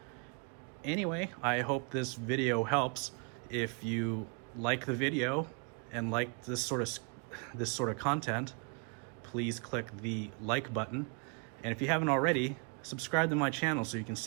Anyway, I hope this video helps. If you like the video and like this sort of content, please click the like button. And if you haven't already, subscribe to my channel so you can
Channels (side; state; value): left; quieter; 36.3 dB